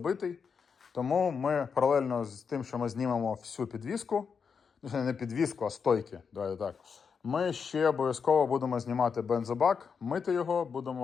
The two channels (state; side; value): quieter; right; 6.1 dB